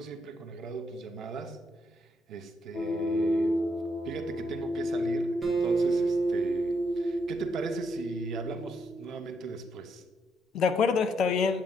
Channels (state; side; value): normal; both; correlation 0.76